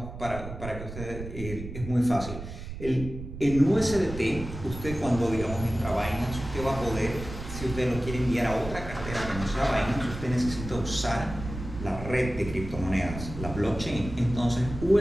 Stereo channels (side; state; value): right; noise; rumble, 10 dB below the sound